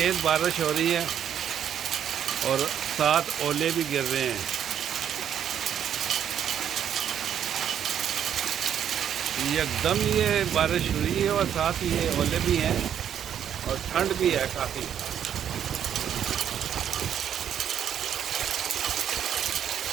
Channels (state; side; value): quieter; left; 9.3 dB